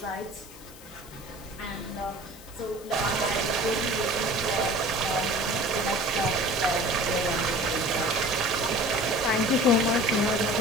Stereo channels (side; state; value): left; noise; hiss, 19 dB below the sound